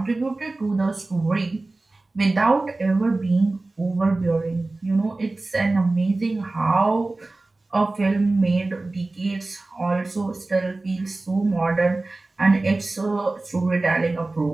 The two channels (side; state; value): left; quieter; 3.1 dB